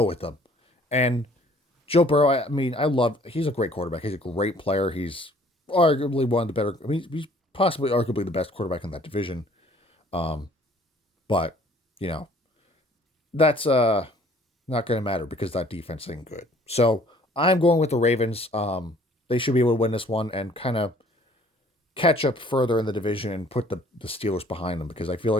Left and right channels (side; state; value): both; normal; correlation 0.57